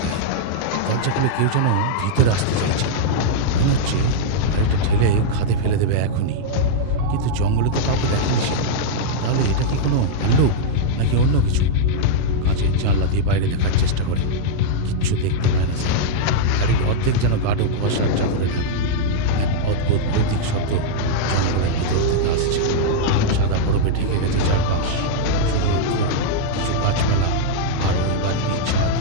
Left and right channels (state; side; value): different; both; correlation -0.02